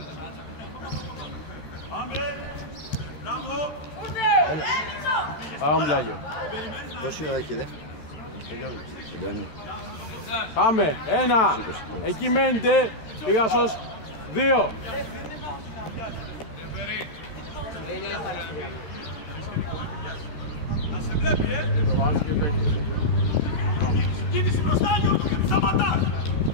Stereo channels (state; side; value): late; right; 13 ms